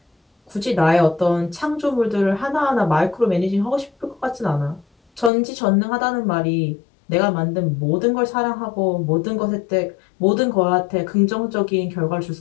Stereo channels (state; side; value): drops out; right; at 5.3 s